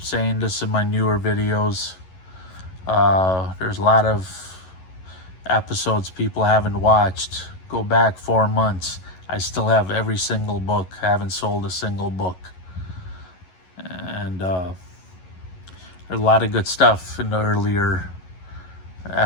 saying this in my newer videos. There's a lot of episodes people haven't watched. Go back 4 months. I still have every single book. I haven't sold a single book. And there's a lot of good stuff in the earlier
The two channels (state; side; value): late; right; 11 ms